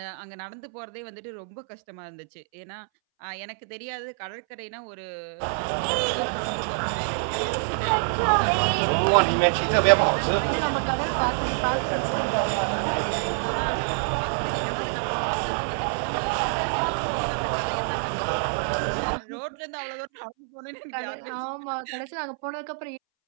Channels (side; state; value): left; silent; 60 dB below the other